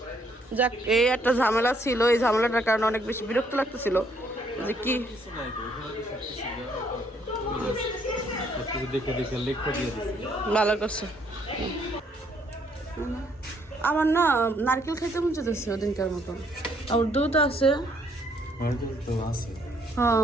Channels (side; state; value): both; normal; correlation 0.68